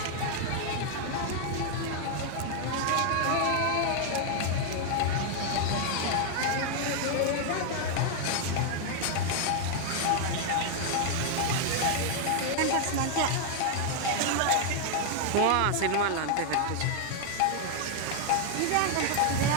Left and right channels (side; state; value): both; different; correlation 0.00